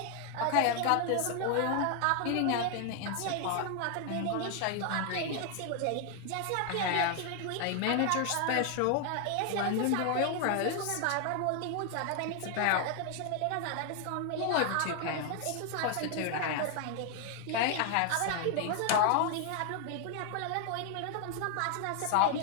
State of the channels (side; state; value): both; different; correlation 0.00